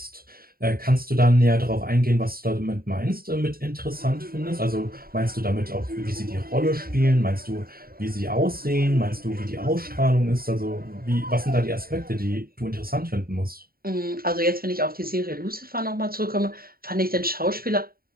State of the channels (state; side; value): late; left; 0.43 ms